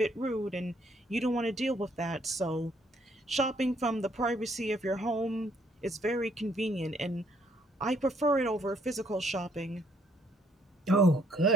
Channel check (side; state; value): both; normal; correlation 0.67